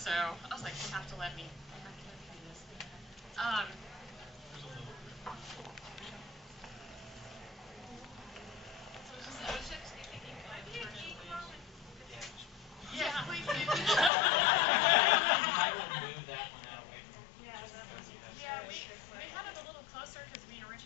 I was like, they have to let me do this. Yeah, please do. I would move that one out away from Yeah, we had it a little closer because we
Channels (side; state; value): right; drops out; at 14.1 s